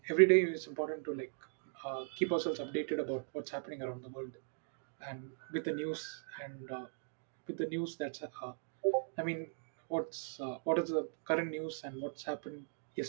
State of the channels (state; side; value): silent; left; digital silence